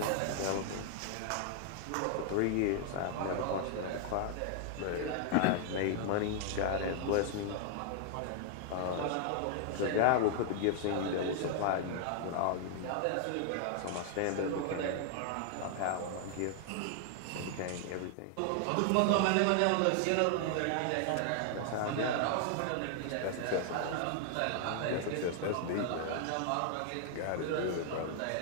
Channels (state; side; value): different; both; correlation 0.00